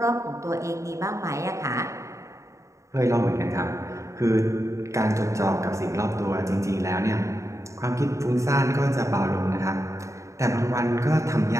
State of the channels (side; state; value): left; late; 0.15 ms